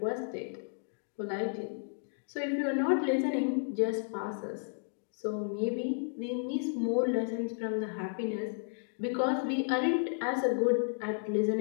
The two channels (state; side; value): silent; right; digital silence